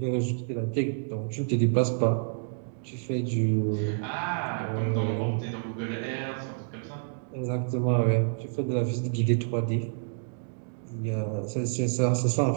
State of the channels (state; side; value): silent; left; digital silence